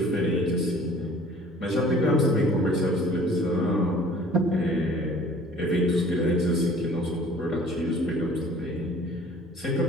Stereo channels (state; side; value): normal; both; correlation 0.50